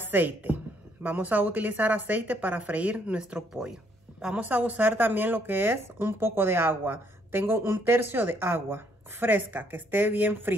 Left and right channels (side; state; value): both; normal; correlation 0.69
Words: Vamos a utilizar aceite para freír nuestro pollo. Vamos a usar también lo que es un poco de agua. Tengo 1/3 de agua fresca, que esté bien